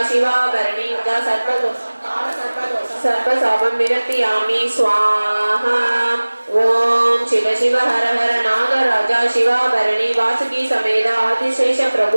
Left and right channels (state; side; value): inverted; both; correlation -1.00